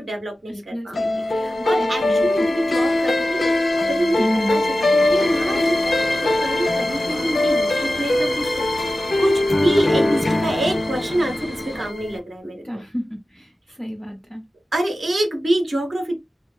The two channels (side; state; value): both; normal; correlation 0.94